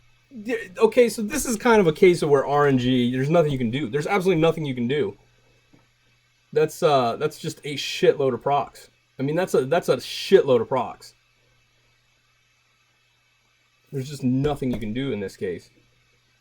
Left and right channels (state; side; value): identical; both; correlation 1.00